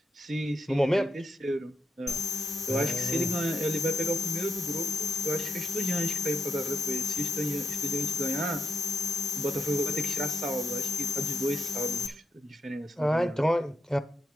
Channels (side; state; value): both; normal; correlation 0.82